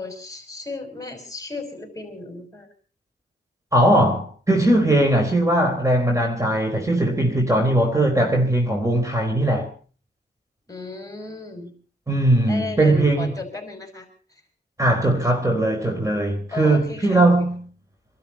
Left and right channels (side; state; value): both; normal; correlation 0.69